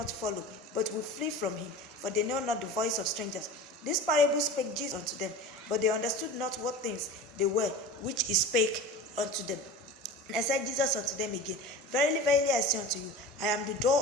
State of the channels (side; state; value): both; normal; correlation 0.34